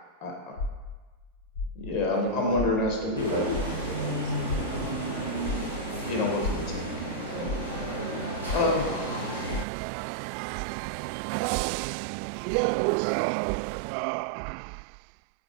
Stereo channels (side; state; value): left; drops out; at 9.7 s